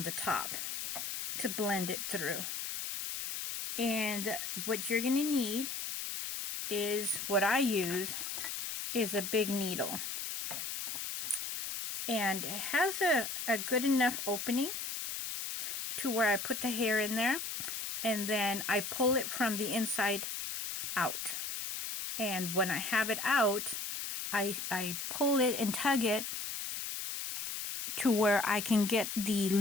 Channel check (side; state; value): left; noise; hiss, 5 dB below the sound